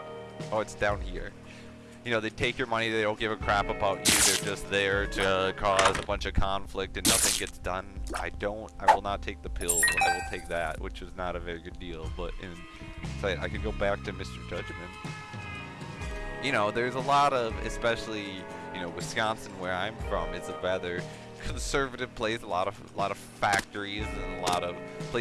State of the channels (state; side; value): identical; both; correlation 1.00